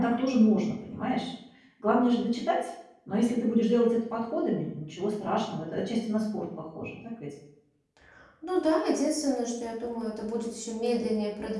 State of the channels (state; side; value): identical; both; correlation 1.00